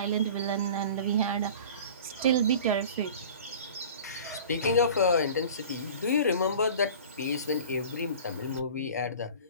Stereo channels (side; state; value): both; inverted; correlation -0.41